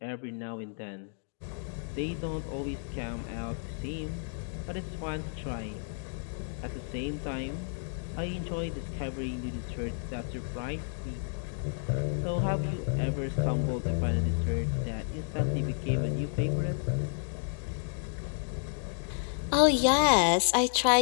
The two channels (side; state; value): right; silent; digital silence